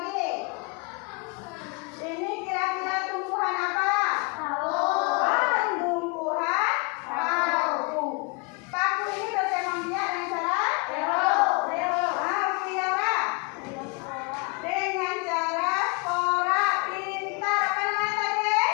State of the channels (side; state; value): right; quieter; 31.4 dB